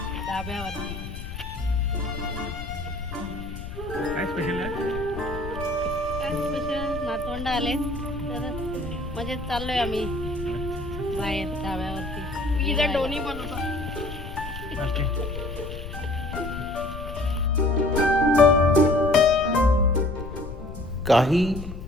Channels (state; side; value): noise; left; rumble, 9 dB below the sound